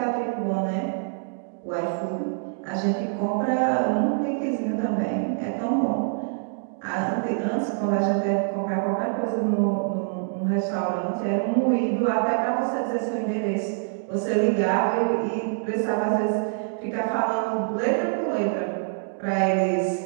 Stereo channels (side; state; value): left; silent; digital silence